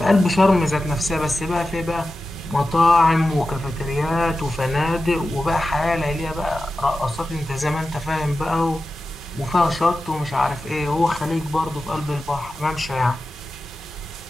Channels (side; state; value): both; normal; correlation 0.93